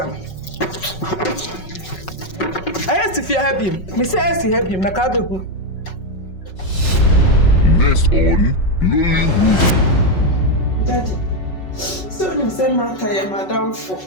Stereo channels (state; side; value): late; right; 5.4 ms